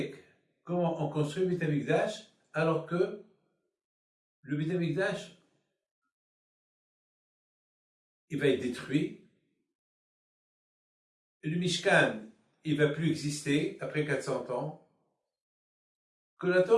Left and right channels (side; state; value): both; identical; correlation 1.00